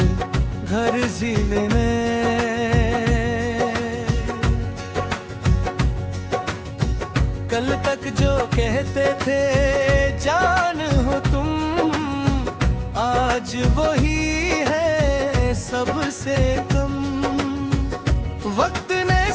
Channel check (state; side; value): identical; both; correlation 1.00